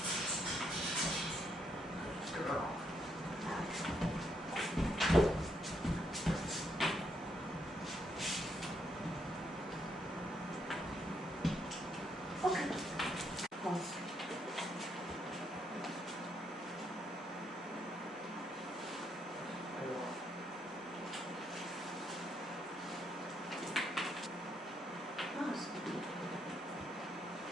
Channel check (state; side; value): normal; both; correlation 0.76